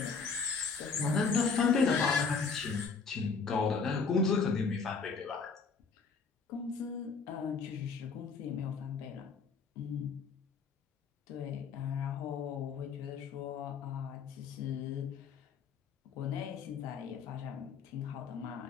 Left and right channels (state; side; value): quieter; right; 5.1 dB